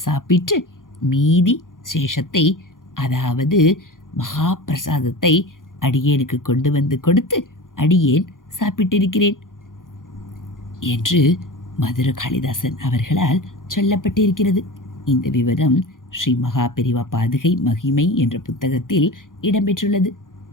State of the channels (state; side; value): late; right; 0.89 ms